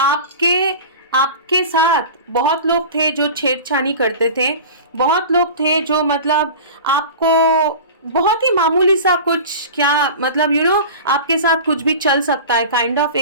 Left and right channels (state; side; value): inverted; both; correlation -0.35